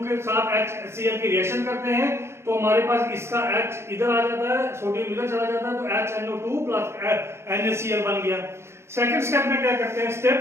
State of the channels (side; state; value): left; late; 0.13 ms